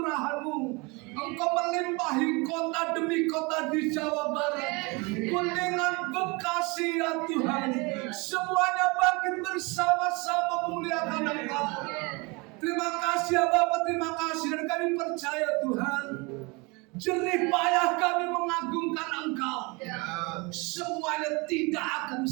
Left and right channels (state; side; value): quieter; left; 27.3 dB